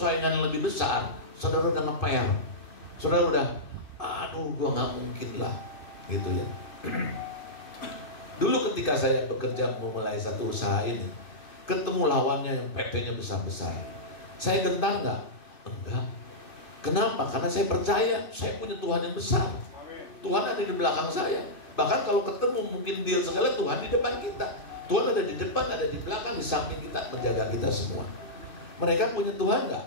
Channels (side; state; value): right; late; 2.5 ms